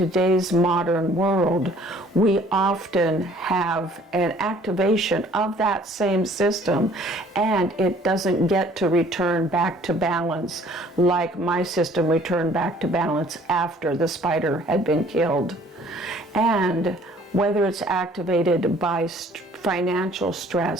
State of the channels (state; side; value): normal; both; correlation 0.55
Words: modern world, we often have an activation of that same system, and it doesn't get to return back to balance like my system returned back to balance after the spider had been killed. And whether it's activated by financial